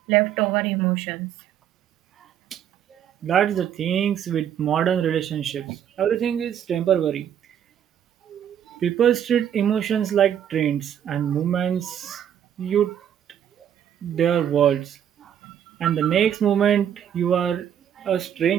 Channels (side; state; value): left; quieter; 9.6 dB